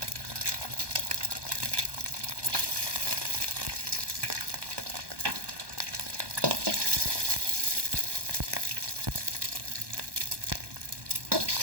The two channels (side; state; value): left; late; 1.2 ms